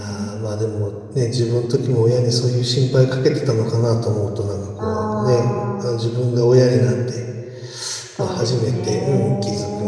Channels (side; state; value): both; identical; correlation 1.00